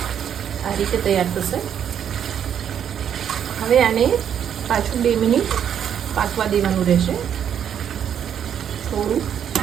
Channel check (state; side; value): quieter; left; 8.9 dB